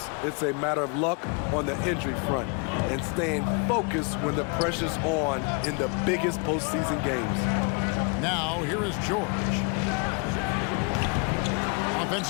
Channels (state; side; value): quieter; right; 35.0 dB